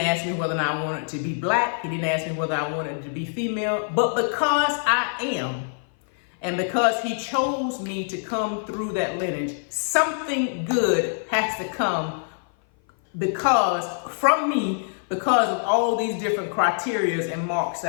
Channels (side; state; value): right; silent; 56 dB below the other